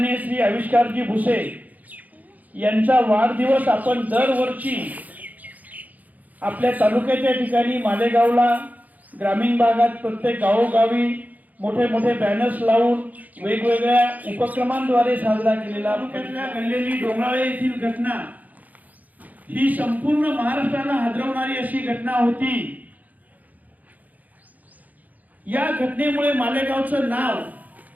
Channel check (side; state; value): left; late; 0.079 ms